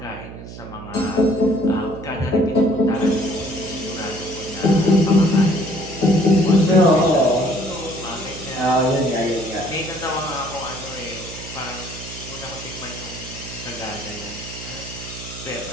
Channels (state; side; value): noise; right; hum, 13 dB below the sound